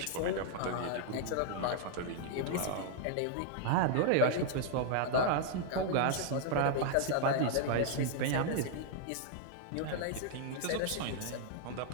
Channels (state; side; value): different; both; correlation 0.00